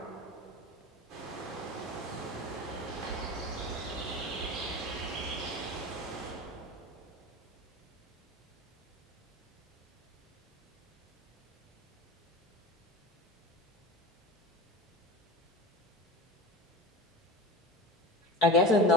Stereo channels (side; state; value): both; normal; correlation 0.32